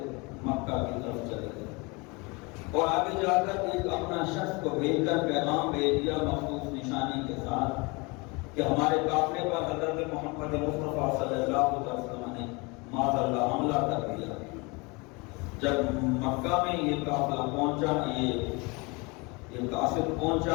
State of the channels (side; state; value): right; quieter; 27.6 dB